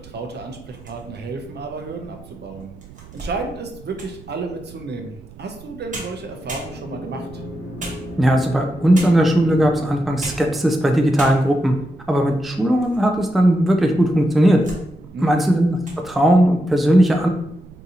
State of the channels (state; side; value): noise; right; rumble, 20 dB below the sound